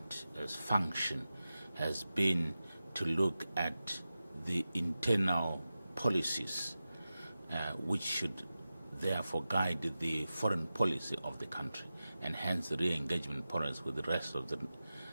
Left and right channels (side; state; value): both; inverted; correlation -0.94